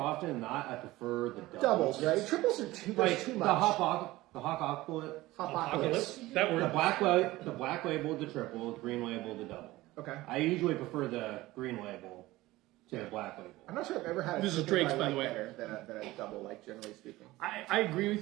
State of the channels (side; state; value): left; quieter; 18.3 dB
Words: than not. I prefer the Doubles, right? Triples are too much. The Hopocalypse. Hopocalypse. That word. The black label, the triple, the green label, the double. Okay. I usually prefer the green label to the black label. I'm not sure I've ever had. This is triple Drake's, I by like the way. better than a double, like generally speaking. I agree